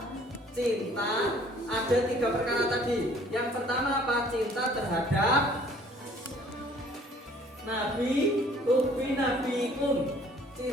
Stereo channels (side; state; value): both; normal; correlation 0.56